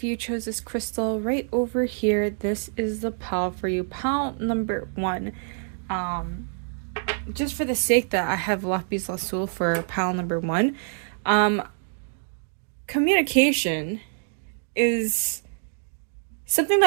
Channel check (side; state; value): left; silent; digital silence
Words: you chose this crystal right over here, this is the pile for you. Pile number 1. Just for the sake that I have Lapis Lazuli for pile number 1, communication is something